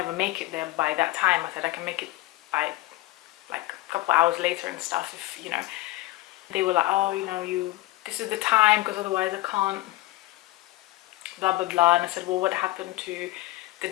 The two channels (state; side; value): quieter; right; 18.4 dB